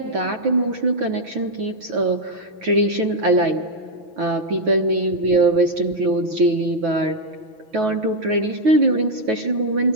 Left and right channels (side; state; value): left; late; 6.1 ms